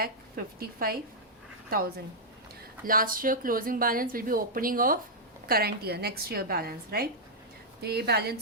Last year closing balance will be opening of current year, next year balance, right. तो ये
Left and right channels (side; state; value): both; normal; correlation -0.07